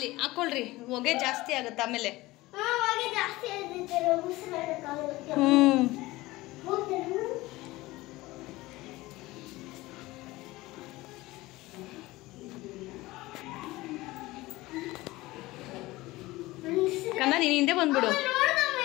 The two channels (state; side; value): quieter; right; 19.4 dB